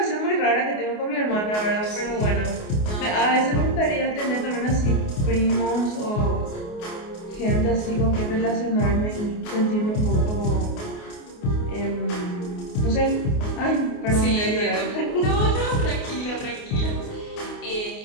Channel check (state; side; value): late; right; 28 ms